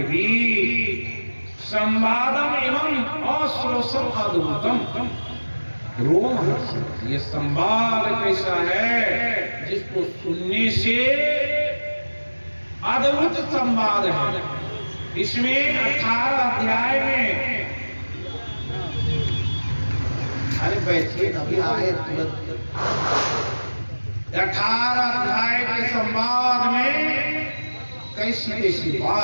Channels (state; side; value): inverted; both; correlation -1.00